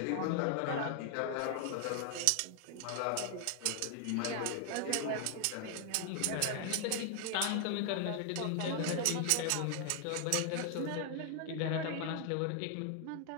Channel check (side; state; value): both; different; correlation 0.00